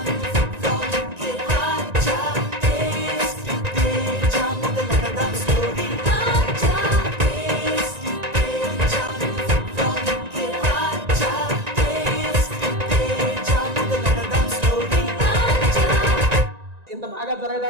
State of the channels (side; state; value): left; late; 1.9 ms